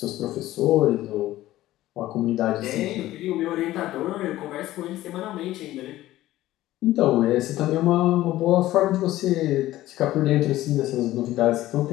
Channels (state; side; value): quieter; right; 15.4 dB